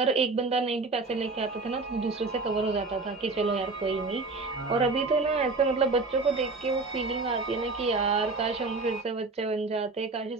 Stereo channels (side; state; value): left; quieter; 3.7 dB